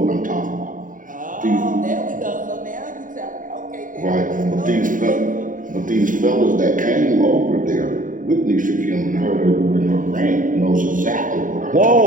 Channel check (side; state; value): left; late; 0.39 ms